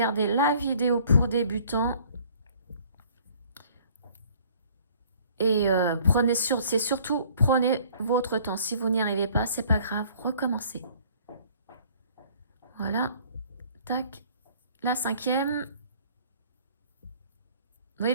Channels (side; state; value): both; inverted; correlation -0.55